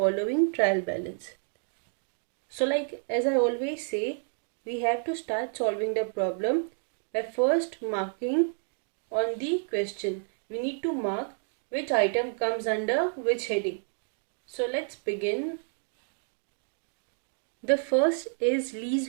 trial balance. So as I always say, we have to start solving the problem by first marking on the question. We need to mark which item comes under which heading. So let's begin. The first is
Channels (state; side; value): silent; left; 57 dB below the other